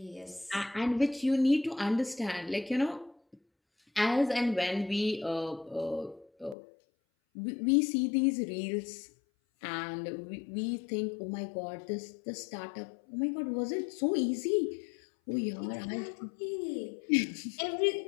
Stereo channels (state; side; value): drops out; right; at 6.6 s